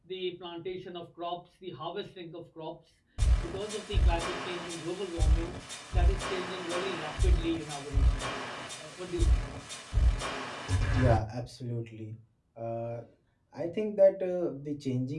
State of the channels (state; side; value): identical; both; correlation 1.00